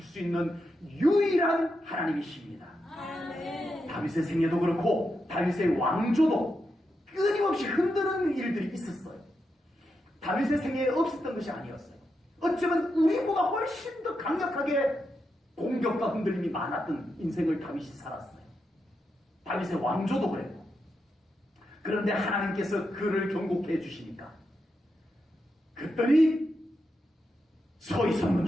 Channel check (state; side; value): normal; both; correlation 0.85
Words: 수 있는 유일한 하나님이십니다. 다윗의 생애도 그렇고 다윗의 왕조도 끊임없이 흔드는 일들이 있었어요. 다윗의 생애에 없었던 것이 아니었어요. 어쩌면 우리보다 훨씬 더 강력하게 공격과 흔들림이 많았던 인생을 다윗이 살았어요. 다윗의 왕조도 그랬고. 그런데 하나님께서 그를 견고케 해주시니까 그들이 서 있었는